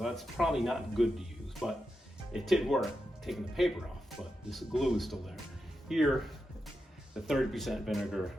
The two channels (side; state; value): both; normal; correlation 0.88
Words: that's probably not good to use, but it did work, taking the paper off, but this glue is still there. Here, the 30% vinegar